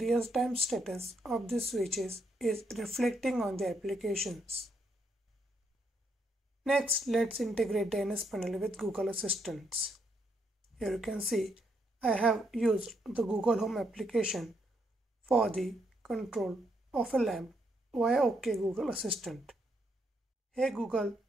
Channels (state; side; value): normal; both; correlation 0.76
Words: status of the switches is reflecting on the applications. Next, let's integrate the NS panel with Google Assistant. Here you can see I have used the Google Home application for the control of a lamp via OK Google Assistant. Hey Google,